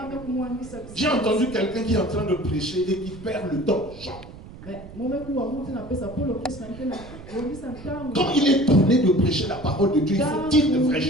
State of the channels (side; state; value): right; noise; rumble, 16 dB below the sound